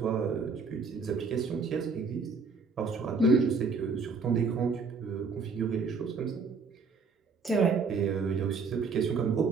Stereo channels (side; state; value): left; quieter; 4.8 dB